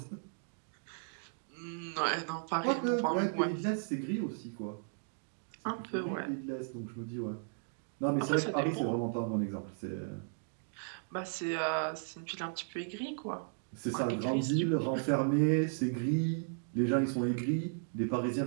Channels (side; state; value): left; silent; digital silence